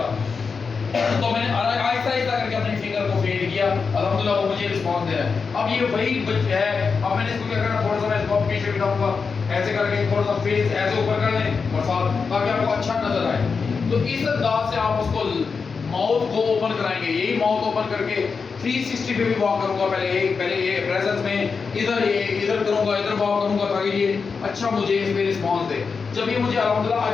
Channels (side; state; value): right; quieter; 5.2 dB